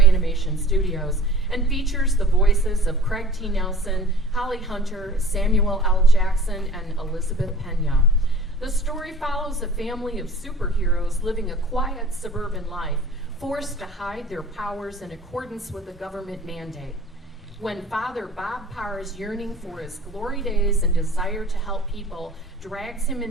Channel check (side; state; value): both; normal; correlation 0.46